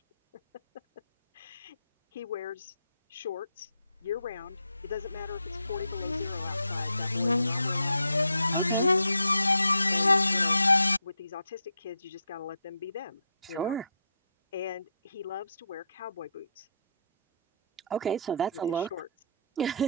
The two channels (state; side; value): inverted; both; correlation -0.75